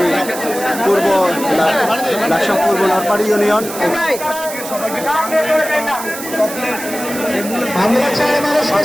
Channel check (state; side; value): noise; right; hiss, 10 dB below the sound